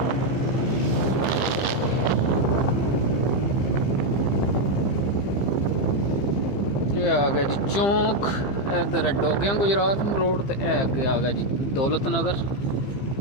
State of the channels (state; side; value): late; right; 15 ms